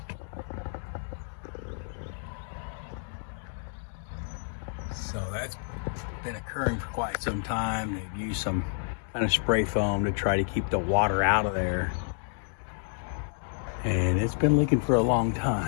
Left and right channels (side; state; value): right; silent; digital silence